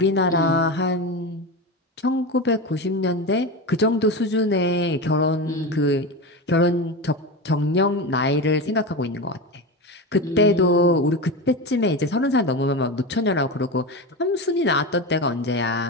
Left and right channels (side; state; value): both; normal; correlation 0.21